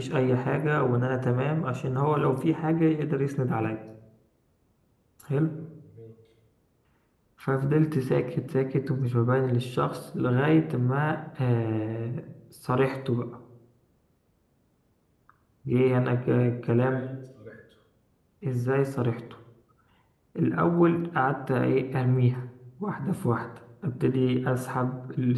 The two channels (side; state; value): both; identical; correlation 1.00